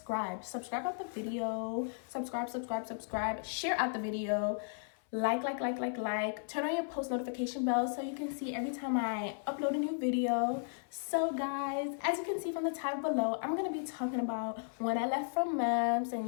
Subscribe out the video. Subscribe. Share out the video. Like. Turn on your post notification bell so you can see every time I upload a new video. So guys, as you can see from the title below, I'm going to be talking about when I left from MEMS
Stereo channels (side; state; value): right; silent; 54 dB below the other